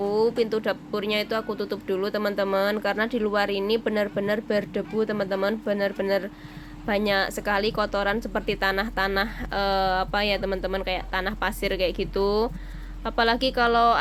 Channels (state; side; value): identical; both; correlation 1.00